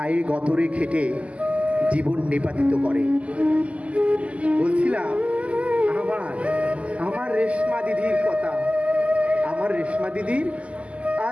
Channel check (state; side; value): late; left; 0.064 ms